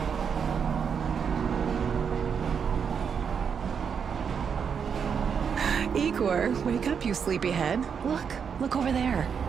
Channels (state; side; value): quieter; left; 6.8 dB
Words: Igor, wake up, you sleepyhead. Look over there.